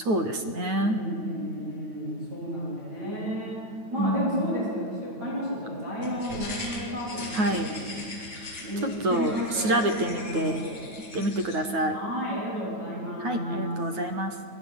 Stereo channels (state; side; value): late; left; 9.3 ms